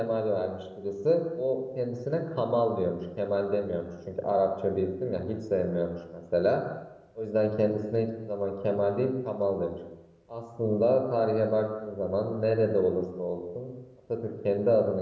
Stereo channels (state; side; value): identical; both; correlation 1.00